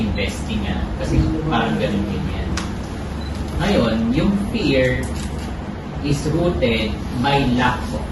kasi parang ganun din yan. Ngayon, yung fear is rooted by lack of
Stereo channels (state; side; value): identical; both; correlation 1.00